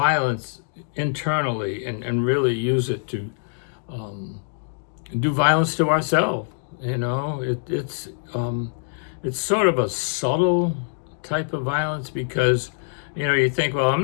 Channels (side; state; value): right; silent; digital silence